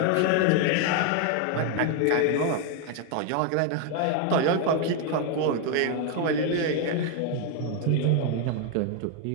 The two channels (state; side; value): different; both; correlation 0.01